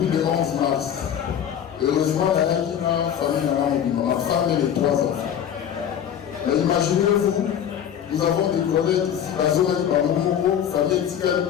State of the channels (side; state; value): right; quieter; 9.3 dB